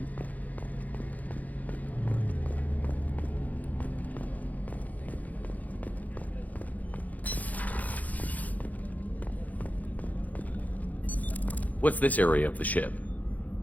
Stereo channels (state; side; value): late; right; 0.078 ms